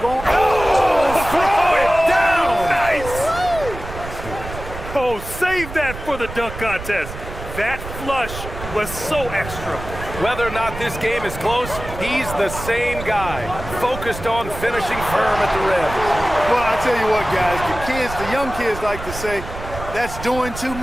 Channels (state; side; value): noise; right; rumble, 10 dB below the sound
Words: Oh, throw it down! Nice! Oh, save that for the dunk contest. That flush was so extra. Whether or not this game is close, he's the same guy, focused on finishing firm at the rim. Well, I tell you what, guys, the young kids like to say, that's doing too